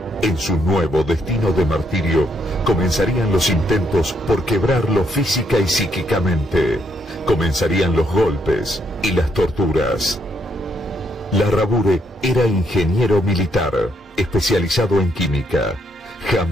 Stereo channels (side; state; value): both; normal; correlation 0.74